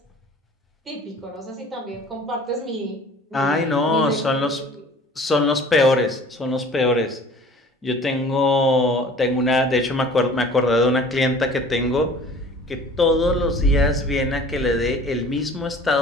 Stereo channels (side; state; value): both; normal; correlation 0.47